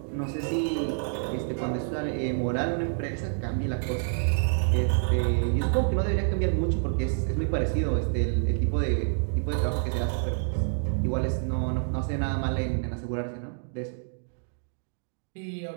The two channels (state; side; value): silent; left; digital silence